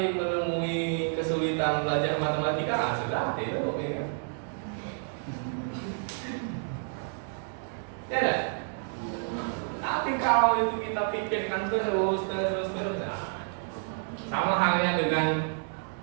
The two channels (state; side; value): silent; left; 58 dB below the other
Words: menemui kesulitan belajar matematika, sudah itu, ya kan? Ya kan? Tapi kalau itu kita pikirkan terus, nah, sama halnya dengan